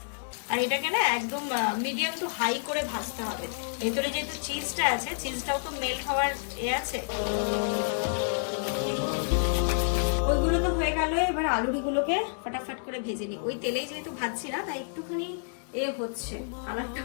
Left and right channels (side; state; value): right; silent; digital silence